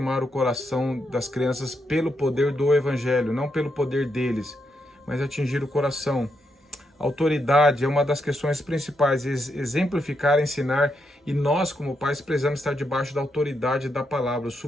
o coração das crianças pelo poder do Evangelho, não pelo poder deles, mas atingir o coração. Autoridade é uma das questões principais, exemplificar, ensinar, e nós como pais precisamos estar debaixo da autoridade da palavra,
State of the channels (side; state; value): both; normal; correlation 0.81